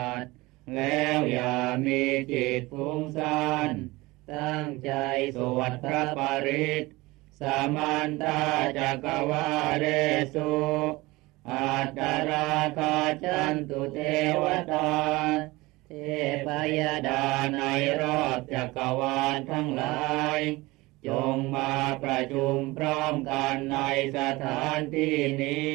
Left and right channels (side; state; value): left; quieter; 21.4 dB